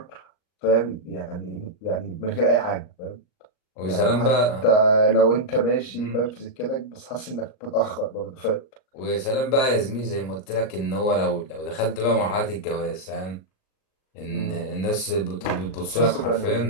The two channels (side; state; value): right; late; 38 ms